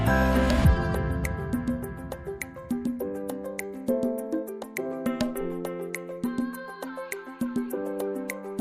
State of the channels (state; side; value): identical; both; correlation 1.00